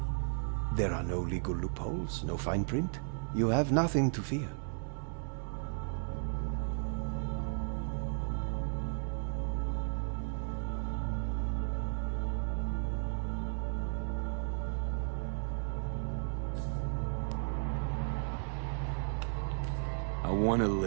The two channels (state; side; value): silent; left; 55 dB below the other